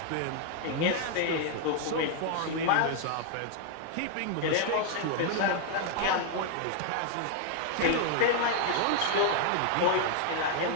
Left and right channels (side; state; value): both; different; correlation 0.00